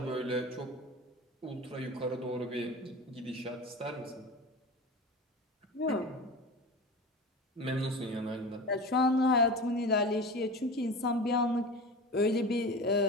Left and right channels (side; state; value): both; normal; correlation 0.31